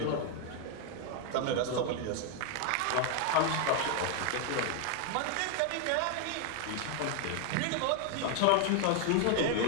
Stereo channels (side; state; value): both; different; correlation 0.00